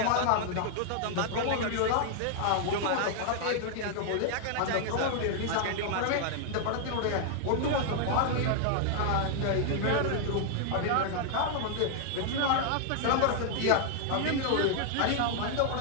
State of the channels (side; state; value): both; different; correlation 0.00